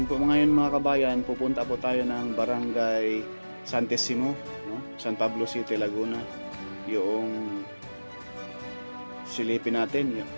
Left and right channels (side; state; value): both; inverted; correlation -1.00